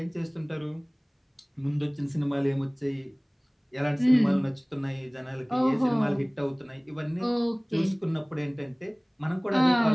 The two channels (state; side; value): identical; both; correlation 1.00